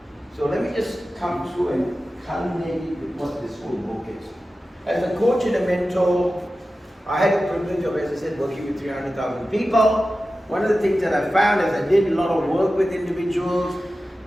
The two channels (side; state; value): both; normal; correlation 0.94